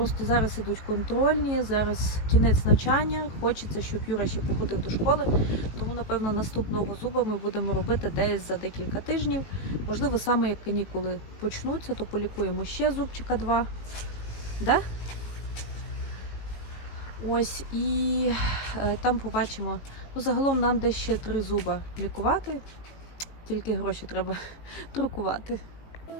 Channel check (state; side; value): late; right; 18 ms